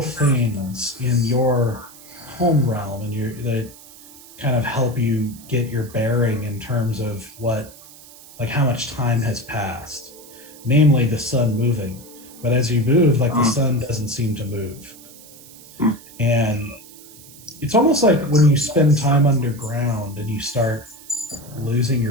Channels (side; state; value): right; noise; hiss, 20 dB below the sound